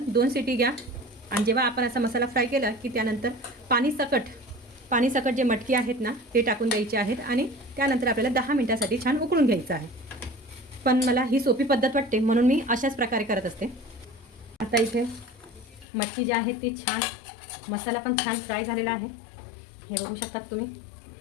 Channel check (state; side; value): drops out; right; at 15.9 s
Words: 2 शिटी घ्या. आणि जेव्हा आपण असा मसाला फ्राय केला की त्यानंतर पाणी सकट जे मटकी आहेत ना ते टाकून द्यायचे आहेत. आणि त्यानंतर आपल्याला 10 मिनिटासाठी छान उकळून घ्यायचं आहे. पण मला ही सोपी पद्धत वाटते म्हणून मी अशाच प्रकारे करत असते. आता इथे मटकी जी आहे ती छान, मसाला पण छान फ्राय झालेला आहे, हे बघू शकतात तुम्ही.